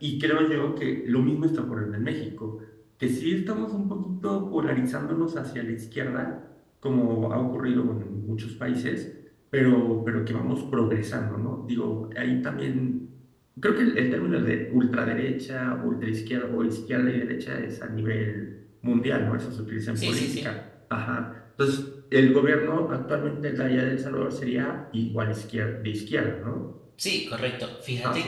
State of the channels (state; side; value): identical; both; correlation 1.00